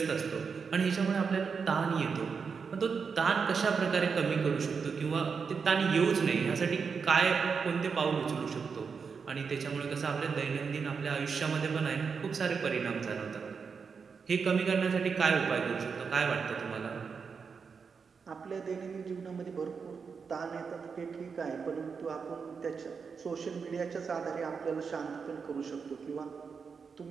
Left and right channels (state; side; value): quieter; left; 5.7 dB